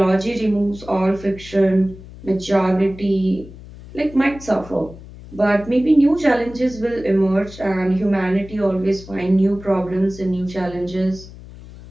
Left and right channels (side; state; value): left; noise; hum, 17 dB below the sound